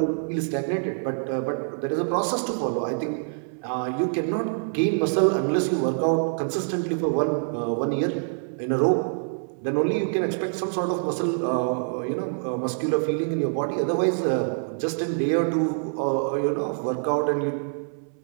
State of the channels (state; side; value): silent; left; 59 dB below the other